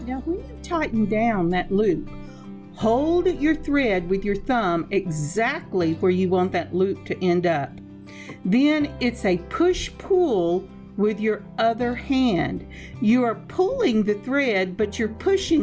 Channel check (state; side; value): identical; both; correlation 1.00